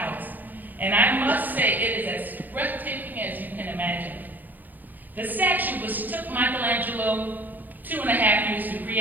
and I must say it is as breathtaking as you can imagine. The statue, which took Michelangelo 2.5 years to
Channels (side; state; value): left; late; 0.085 ms